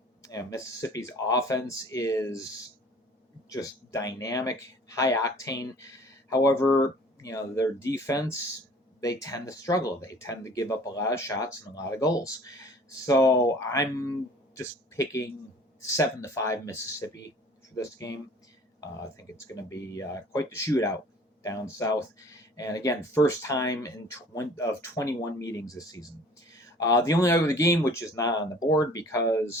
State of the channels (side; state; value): both; normal; correlation 0.50